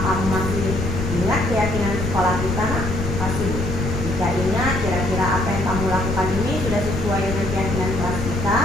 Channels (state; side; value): noise; left; rumble, 3 dB below the sound